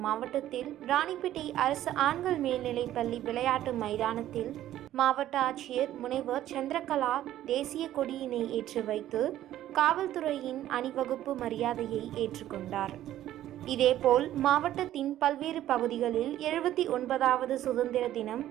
மாவட்டத்தில் ராணிப்பேட்டை அரசு ஆண்கள் மேல்நிலைப் பள்ளி விளையாட்டு மைதானத்தில் மாவட்ட ஆட்சியர் முனைவர் சந்திரகலா தேசிய கொடியினை ஏற்றி வைத்து காவல்துறையின் அணிவகுப்பு மரியாதையை ஏற்றுக்கொண்டார். இதேபோல் மாவட்டத்தின் பல்வேறு பகுதிகளில் 79வது சுதந்திர தினம்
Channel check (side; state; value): left; quieter; 12.9 dB